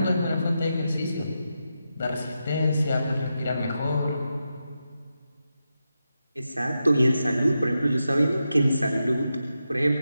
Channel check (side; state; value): both; inverted; correlation -0.88